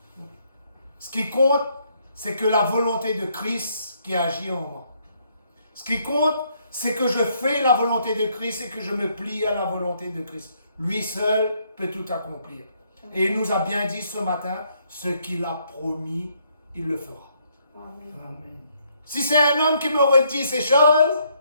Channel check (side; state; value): both; inverted; correlation -0.71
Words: Ce qui compte, c'est que la volonté de Christ qui agit en moi. Ce qui compte, c'est que je fais la volonté de Christ et que je me plie à la volonté de Christ. Lui seul peut tout accomplir. Et il nous a bien dit ce matin, ce qu'il a promis, il le fera. Amen. Amen. Si c'est un homme qui m'aurait dit ces choses,